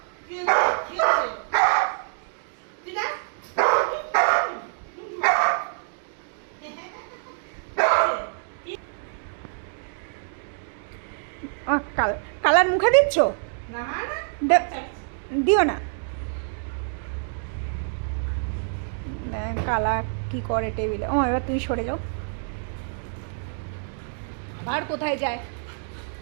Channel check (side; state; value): left; silent; digital silence